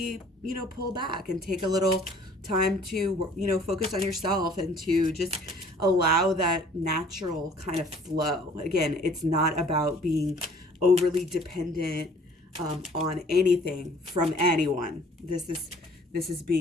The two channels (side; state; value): both; normal; correlation 0.54